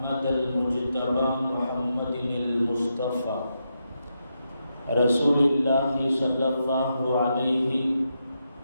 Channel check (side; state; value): both; inverted; correlation -0.84